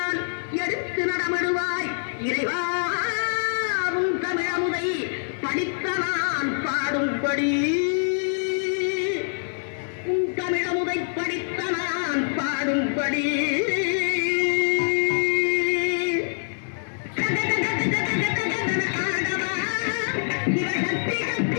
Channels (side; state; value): right; silent; digital silence